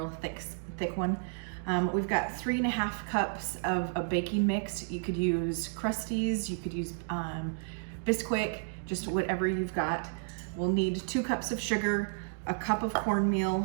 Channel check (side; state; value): left; silent; digital silence